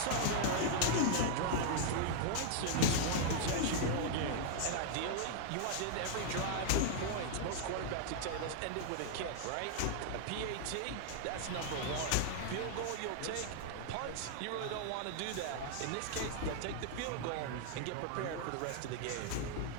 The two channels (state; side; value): different; both; correlation -0.01